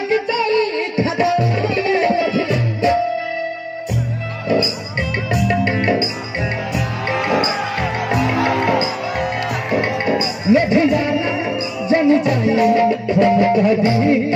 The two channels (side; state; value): both; identical; correlation 1.00